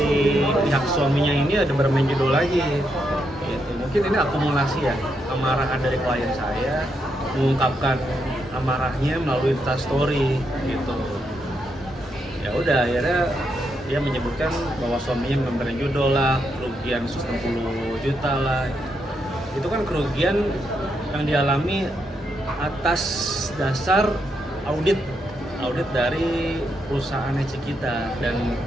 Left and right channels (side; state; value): both; normal; correlation 0.80